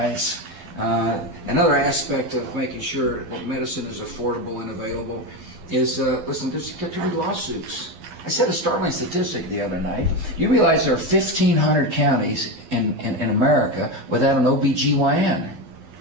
Another aspect of making sure that medicine is affordable and available is, listen, there's too many lawsuits. I said a startling statistic the other night. You realize there are 1,500 counties in America without an OBGYN.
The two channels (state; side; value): late; left; 12 ms